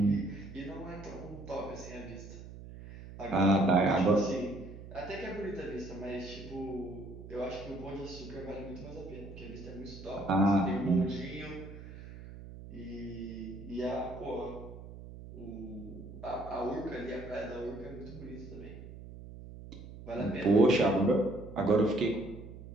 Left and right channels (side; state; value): right; noise; hum, 14 dB below the sound